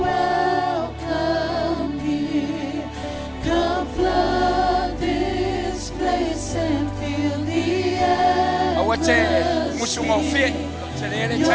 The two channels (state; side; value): identical; both; correlation 1.00